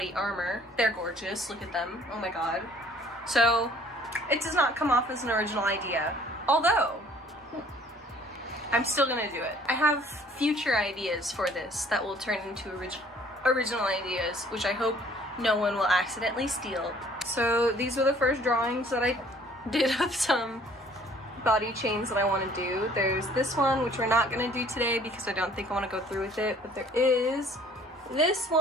armor. They're gorgeous, look at them, oh my god. So it does not come off as an original idea, although I'm still gonna do it. I have future ideas for this that will turn into original ideas, which I hope no one will accidentally steal. So these are the first drawings that I did of some body chains that I want to do. There's this one, which we're not gonna do today because I don't think I want to go through with it, but there is this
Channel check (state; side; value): normal; both; correlation 0.56